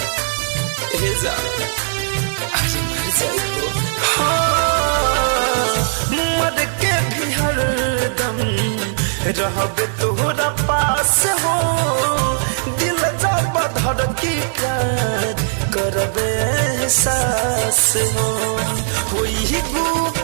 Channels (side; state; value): left; silent; digital silence